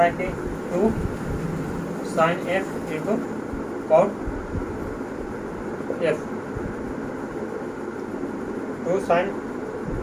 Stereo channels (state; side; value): identical; both; correlation 1.00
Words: है कि 2 sine F into cot F, 2 sine